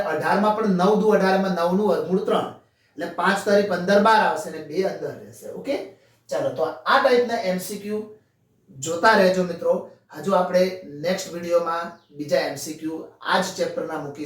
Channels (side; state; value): both; identical; correlation 1.00